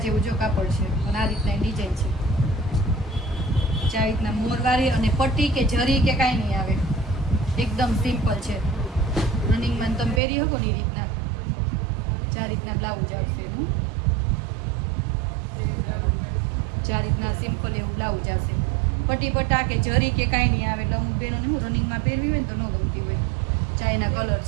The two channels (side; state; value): left; drops out; at 10.2 s